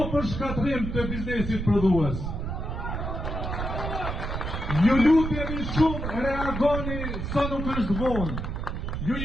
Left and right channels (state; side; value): noise; right; rumble, 4 dB below the sound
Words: për shkatrim të biznesit prodhues. Ju lutemi shumë, reagoni sa nuk është vonë. Ju